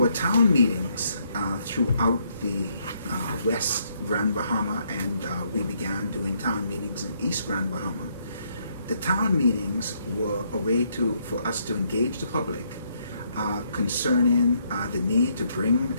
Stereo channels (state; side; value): inverted; both; correlation -0.72